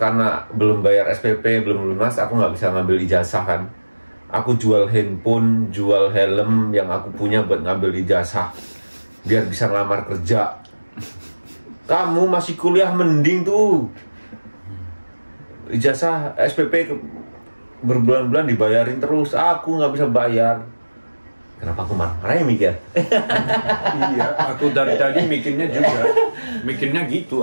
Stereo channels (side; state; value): both; inverted; correlation -1.00